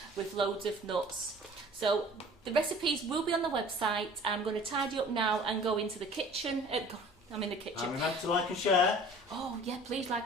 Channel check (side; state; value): both; normal; correlation 0.47